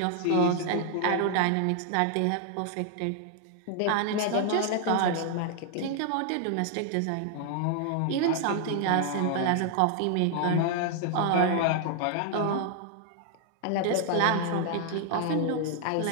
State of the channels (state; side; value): different; both; correlation 0.00